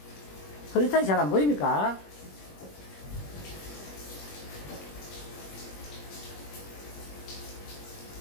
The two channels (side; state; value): right; late; 21 ms